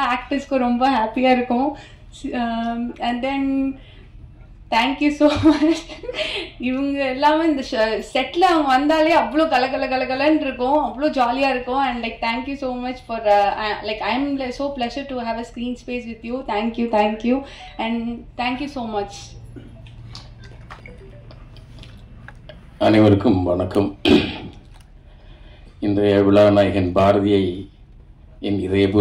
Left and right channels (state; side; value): identical; both; correlation 1.00